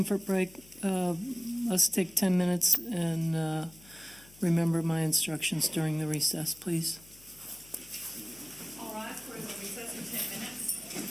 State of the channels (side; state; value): left; noise; hum, 24 dB below the sound